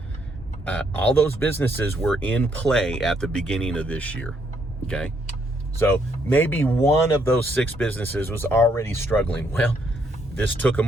all those businesses were in play at the beginning of this year, okay? So maybe one of those 6 businesses was already struggling. Well, this took them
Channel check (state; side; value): normal; both; correlation 0.72